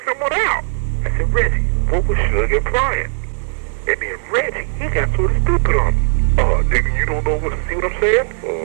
someone out. I said, Reggie, what was Suge implying? And then Reggie, he got sort of stupid on me. Nigga, you don't know see what I'm saying?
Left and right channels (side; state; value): left; silent; digital silence